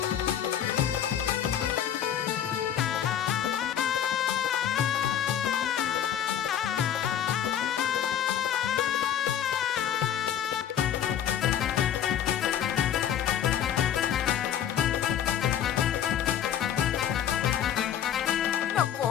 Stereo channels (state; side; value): quieter; right; 9.9 dB